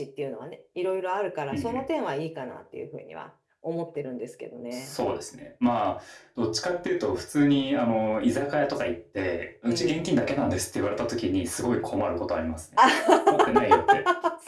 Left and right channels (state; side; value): identical; both; correlation 1.00